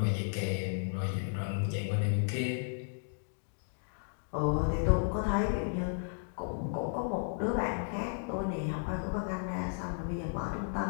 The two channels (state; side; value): silent; right; digital silence